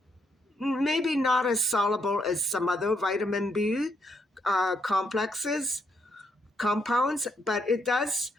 maybe not as soluble as some other vitamin B compounds, but it does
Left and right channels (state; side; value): normal; both; correlation 0.76